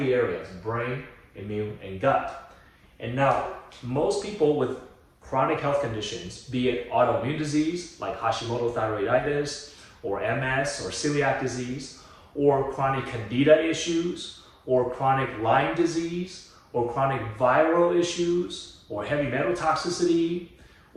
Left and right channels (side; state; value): both; identical; correlation 1.00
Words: areas, brain, immune, and gut. And now, most people with chronic health conditions, be it autoimmune disease like Hashimoto thyroiditis, or MS, or celiac disease, or chronic candida issues, or chronic Lyme disease, or chronic viral issues, or heavy metal toxicity,